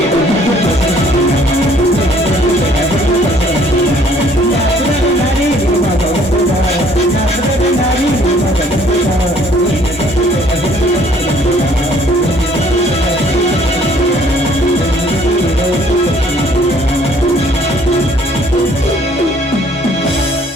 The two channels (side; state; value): both; normal; correlation 0.60